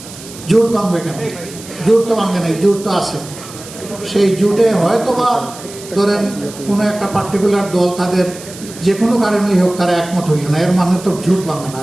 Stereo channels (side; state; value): right; noise; hiss, 16 dB below the sound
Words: জোট ভাঙবে কেন? জোট তো ভাঙবে নাই, জোট তো আছে। সেই জোটে হয়তো বা ধরেন কোনো একটা পার্টিকুলার দল তাদের যে কোনো কারণেই হোক তারা একমত হইল না, এর মানে তো জোট ভাঙবে না।